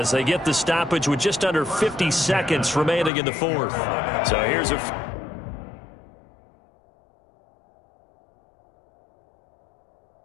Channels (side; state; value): right; drops out; at 3.1 s